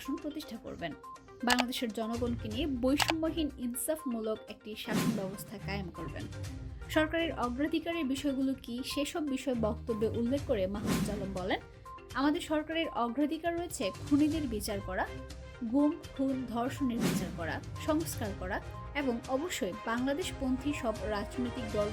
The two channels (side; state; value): both; identical; correlation 1.00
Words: প্রতিষ্ঠা করবেন। বাংলাদেশের জনগণকে নিয়ে বৈষম্যহীন ইনসাফমূলক একটি শাসন ব্যবস্থা কায়েম করবেন। সরকারের অগ্রাধিকারের বিষয়গুলো কি সেসব বিষয় বক্তব্যে উল্লেখ করে মাহফুজ আলম বলেন, আমাদের সরকারের অগ্রাধিকার রয়েছে খুনিদের বিচার করা, গুম, খুন, ধর্ষণের বিচার করা, সংস্কার করা এবং অবশ্যই বাংলাদেশপন্থী সব রাজনৈতিক